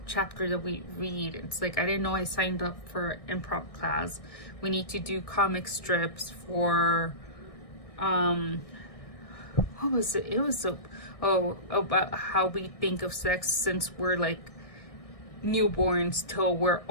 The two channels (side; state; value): right; late; 1.6 ms